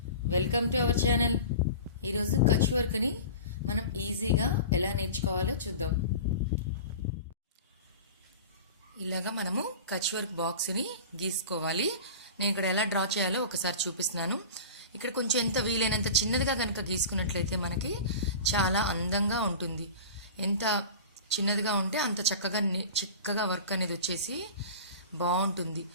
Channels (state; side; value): inverted; both; correlation -0.35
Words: welcome to our channel. ఈరోజు కచ్ వర్క్ని మనం ఈజీగా ఎలా నేర్చుకోవాలో చూద్దాం. ఇలాగా మనము కచ్ వర్క్ బాక్స్ని గీసుకోవాలి. నేను ఇక్కడ ఎలా డ్రా చేయాలో ఒకసారి చూపిస్తున్నాను. ఇక్కడ కొంచెం ఎంత వీలైనంత చిన్నదిగా కనుక గీసుకున్నట్లయితే మనకి చాలా అందంగా ఉంటుంది. ఎంత చిన్నదిగా ఉంటే అంత చక్కగా వర్క్ అనేది వచ్చేసి బాగుంటుంది.